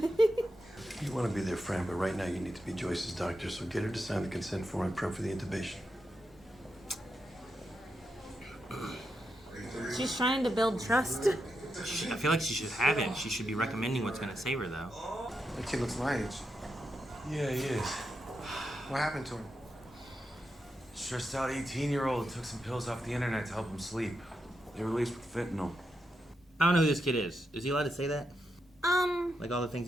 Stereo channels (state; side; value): normal; both; correlation 0.86